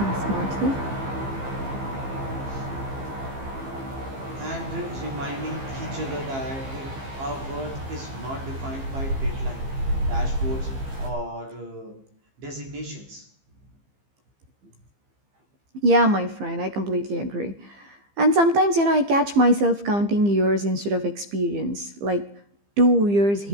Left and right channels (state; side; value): late; left; 15 ms